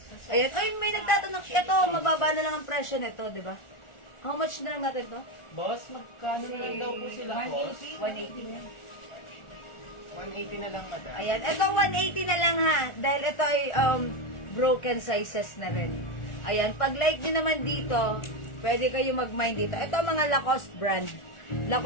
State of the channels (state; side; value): late; right; 1.4 ms